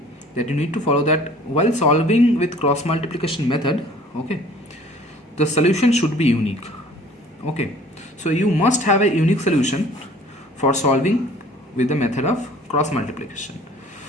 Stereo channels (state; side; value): normal; both; correlation 0.51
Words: that you need to follow, that while solving with cross multiplication method, okay, the solution should be unique. Okay, so you must have a unique solution for solving with the method of cross multiplication.